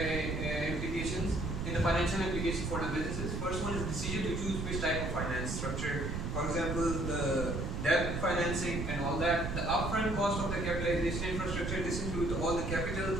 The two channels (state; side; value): noise; right; rumble, 3 dB below the sound